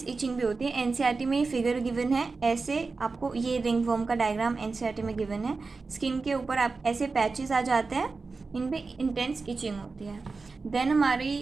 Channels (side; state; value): left; quieter; 4.1 dB